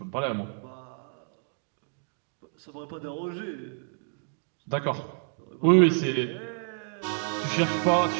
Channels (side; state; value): left; silent; 58 dB below the other